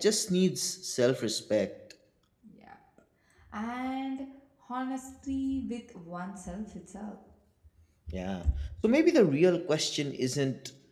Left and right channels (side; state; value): both; identical; correlation 1.00